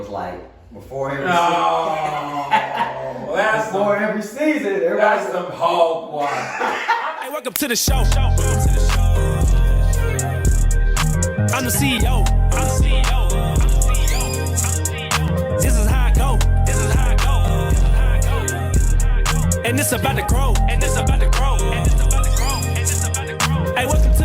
like, before every season, That's some hog water. Hey, welcome to the show. I'm the CEO. This is how I go. And it's about to grow. Hey, welcome to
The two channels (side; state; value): both; identical; correlation 1.00